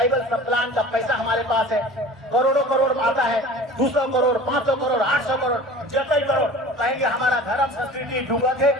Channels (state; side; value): normal; both; correlation 0.41